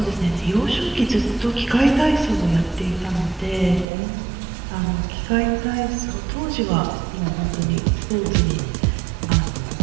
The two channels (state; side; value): drops out; left; at 3.9 s